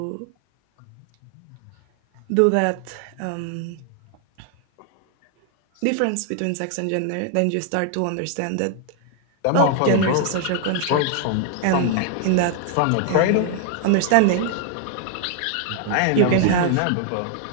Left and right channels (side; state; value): both; different; correlation 0.00